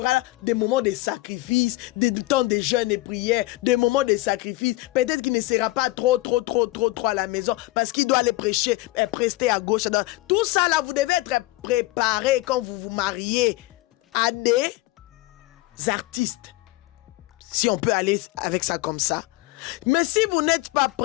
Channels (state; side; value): quieter; right; 19.8 dB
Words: des moments de sacrifice, des temps de jeûne et prière, des moments de sacrifice. Peut-être qu'il ne sera pas trop à la maison parce qu'il doit aller prêcher, prester à gauche, à droite. Tout ça là, vous devez être préparé quand vous vous mariez à des artistes. Si on peut aller avec ça comme ça. Mais si vous n'êtes pas